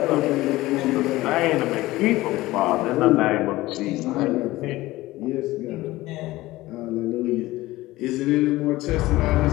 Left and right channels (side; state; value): right; quieter; 18.1 dB